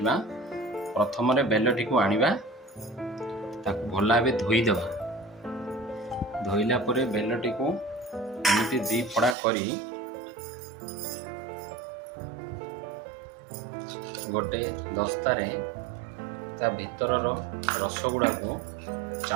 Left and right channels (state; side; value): drops out; left; at 9.3 s